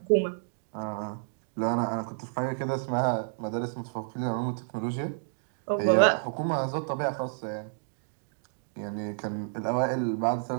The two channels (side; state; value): left; silent; digital silence